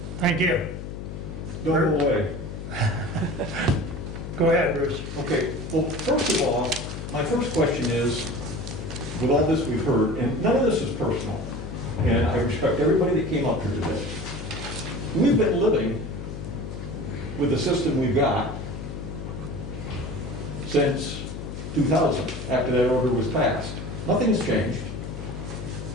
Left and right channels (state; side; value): noise; left; hum, 8 dB below the sound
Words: Thank you. Don't go away. Go ahead, Bruce. Okay, well, first of all, my first question is, with all this we've heard, and none of this is personal, and I respect everybody that came up here today. We've been living with the system we've got since 2000, after that order was passed. Nothing's changed.